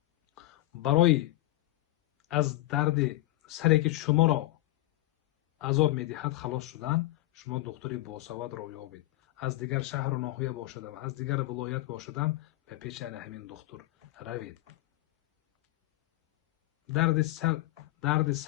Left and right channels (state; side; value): quieter; right; 17.2 dB